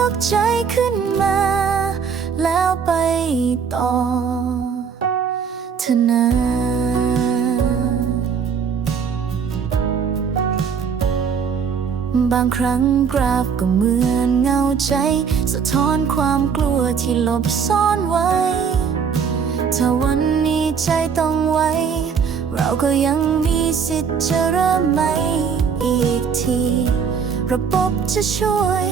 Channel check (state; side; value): quieter; left; 6.5 dB